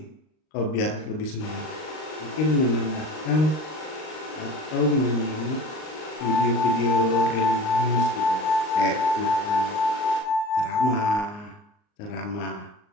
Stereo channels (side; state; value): right; late; 39 ms